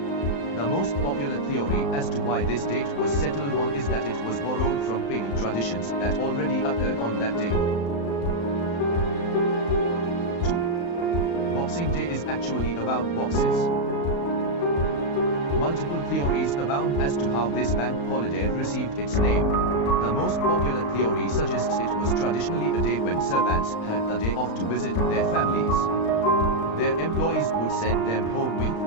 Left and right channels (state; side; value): late; right; 35 ms